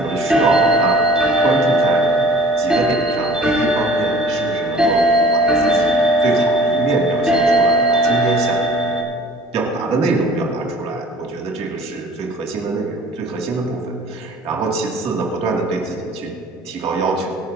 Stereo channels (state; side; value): normal; both; correlation 0.49